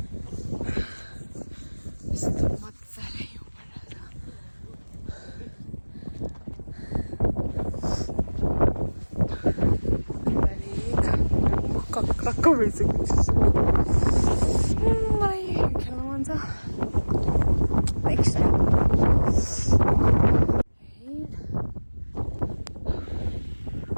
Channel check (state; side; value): inverted; both; correlation -1.00